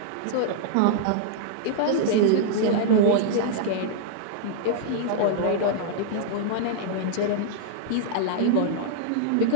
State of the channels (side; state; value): both; different; correlation -0.02